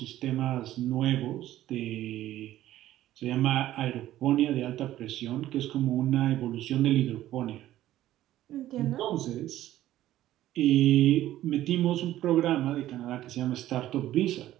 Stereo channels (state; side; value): quieter; left; 13.9 dB